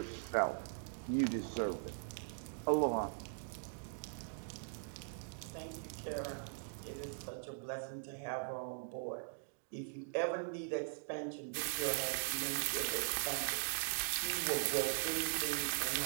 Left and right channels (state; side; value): silent; left; digital silence